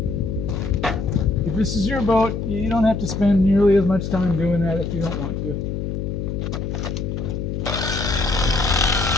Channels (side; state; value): left; noise; hum, 3 dB below the sound